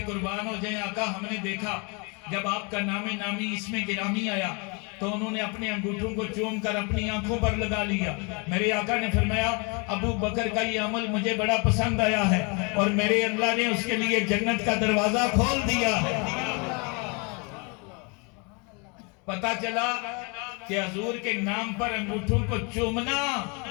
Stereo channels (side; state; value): right; quieter; 32.2 dB